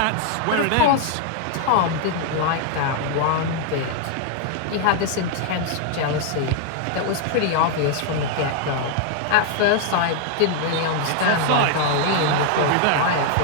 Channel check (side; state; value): both; different; correlation 0.00